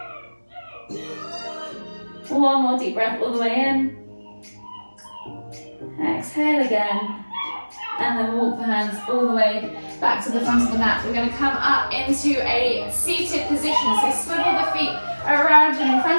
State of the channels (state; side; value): inverted; both; correlation -1.00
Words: One more deep breath all the way in. Exhale again. And then walk the hands all the way back to the front of the mat. We're going to come up into a seated position. So swivel the feet around and in